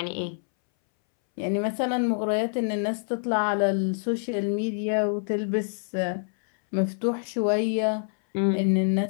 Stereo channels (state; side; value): silent; right; 61 dB below the other